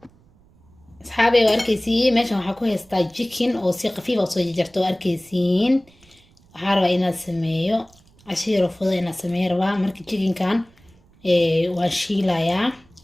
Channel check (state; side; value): noise; right; rumble, 30 dB below the sound